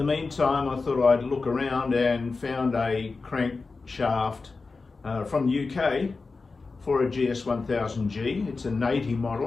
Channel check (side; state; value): right; quieter; 4.1 dB